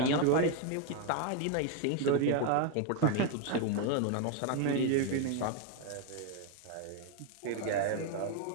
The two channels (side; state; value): both; different; correlation 0.01